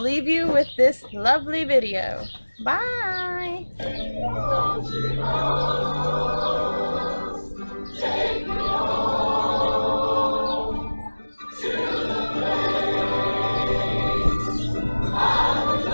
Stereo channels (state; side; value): inverted; both; correlation -1.00